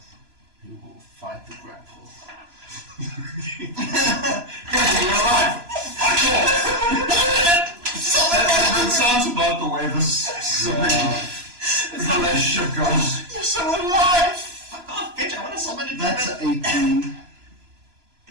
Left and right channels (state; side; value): late; left; 3.0 ms